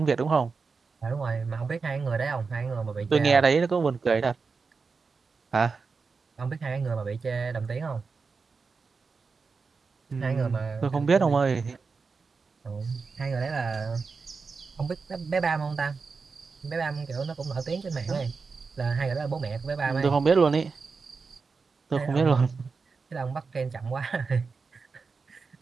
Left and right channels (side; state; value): left; quieter; 4.8 dB